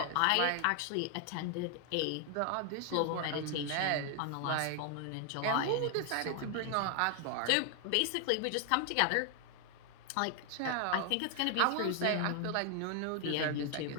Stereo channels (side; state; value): both; different; correlation 0.00